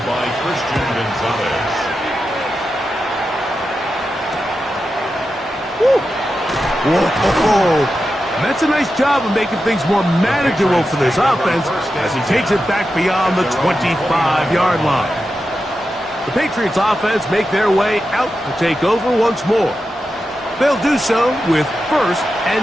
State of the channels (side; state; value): both; normal; correlation 0.90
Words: by Christian Gonzalez. Whoa. That's a nice job of making things more manageable for this offense as he takes it back beyond the 25-yard line. The Patriots offense make their way out to take over once more. They'll do so with first